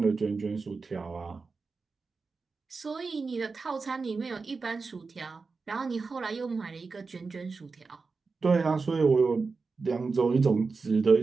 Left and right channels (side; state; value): left; quieter; 4.4 dB